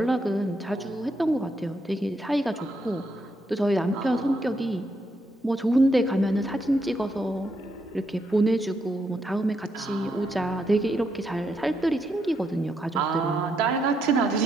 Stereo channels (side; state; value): both; normal; correlation 0.79